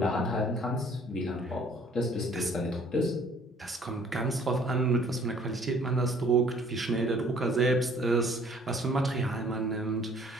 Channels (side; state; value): both; normal; correlation 0.57